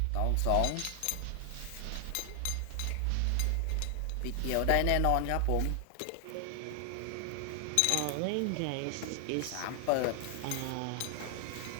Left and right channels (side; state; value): both; different; correlation 0.00